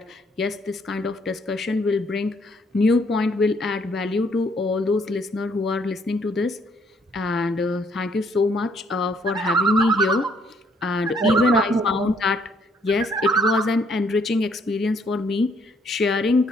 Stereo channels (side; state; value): both; normal; correlation 0.67